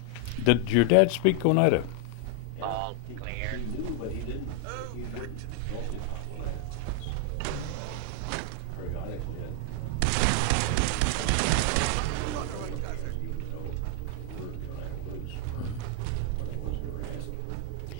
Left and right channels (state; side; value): different; both; correlation 0.00